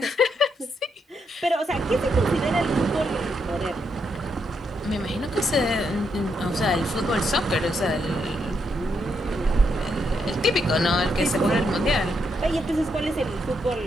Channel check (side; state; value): both; normal; correlation 0.79